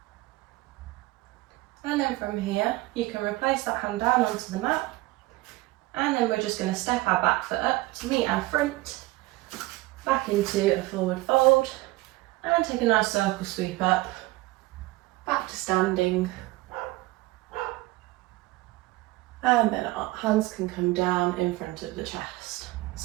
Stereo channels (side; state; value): left; quieter; 19.8 dB